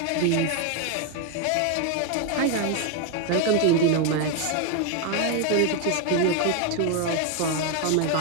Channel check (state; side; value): different; both; correlation 0.01